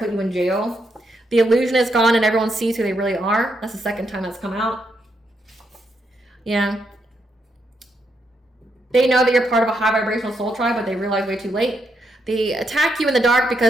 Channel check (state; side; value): normal; both; correlation 0.80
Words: you in jail. The illusion is gone and everyone sees who they really are. That's the second time that's come out. Yeah. They know that you're part of a high vibrational soul tribe, but they realize way too late. They attack you in the dark